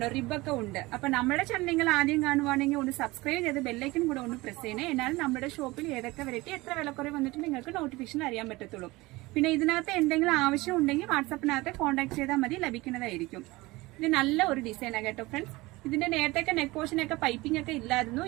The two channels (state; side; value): quieter; left; 21.2 dB